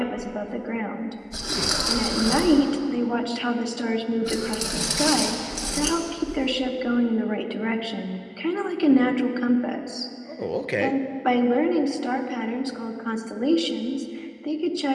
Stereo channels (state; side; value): identical; both; correlation 1.00